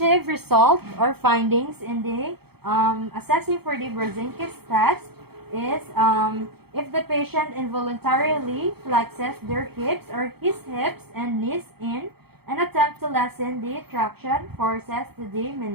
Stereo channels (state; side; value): late; left; 0.96 ms